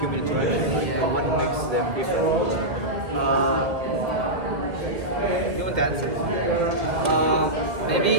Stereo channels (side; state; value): left; late; 1.7 ms